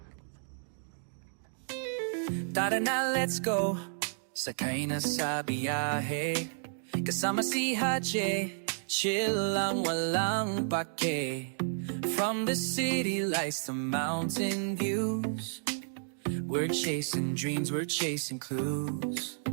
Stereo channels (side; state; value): left; silent; digital silence